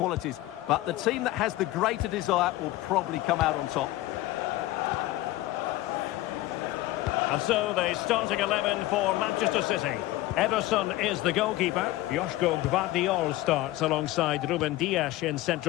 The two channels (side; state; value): right; quieter; 16.9 dB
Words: But the team that has the greater desire will probably come out on top. And so the starting 11 for Manchester City. Ederson is the goalkeeper. Joško Gvardiol starts alongside Ruben Dias in